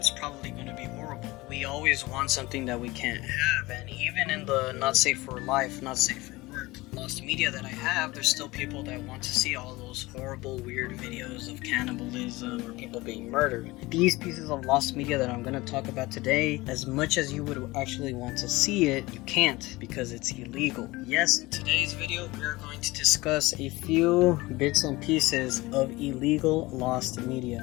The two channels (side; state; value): right; quieter; 20.9 dB